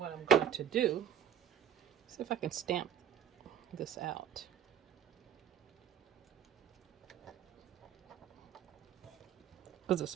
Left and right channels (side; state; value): left; quieter; 9.0 dB